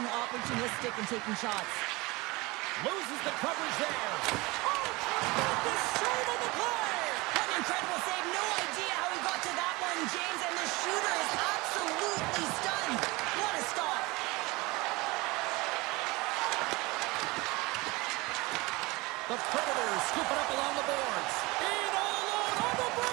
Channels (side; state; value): left; quieter; 23.4 dB